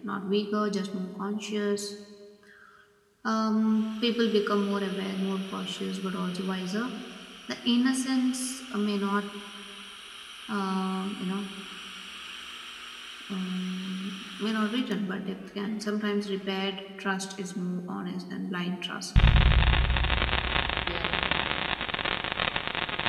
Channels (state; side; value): identical; both; correlation 1.00